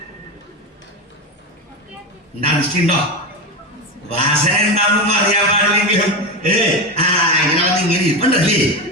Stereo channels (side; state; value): both; normal; correlation 0.18